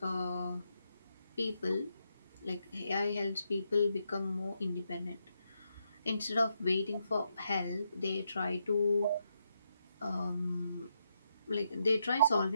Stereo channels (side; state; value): both; inverted; correlation -0.81